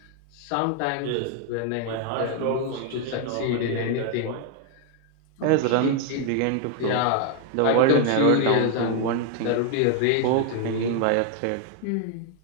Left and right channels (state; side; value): different; both; correlation 0.01